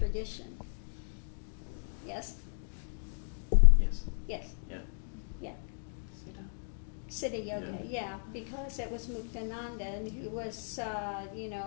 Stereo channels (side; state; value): right; silent; digital silence